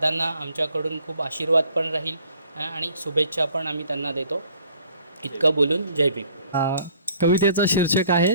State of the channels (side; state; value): both; inverted; correlation -0.58